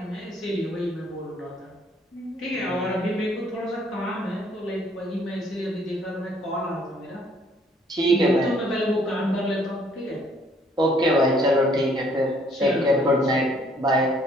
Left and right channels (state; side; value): normal; both; correlation 0.63